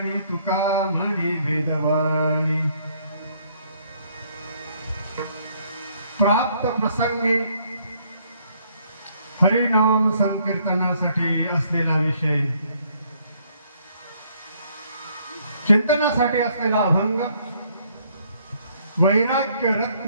तुका म्हणी वेदवाणी प्राप्त प्रसंगी हरिनाम संकीर्तनासाठी असलेला विषय चिंतनासाठी असलेला अभंग वैराग्य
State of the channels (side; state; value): both; inverted; correlation -0.67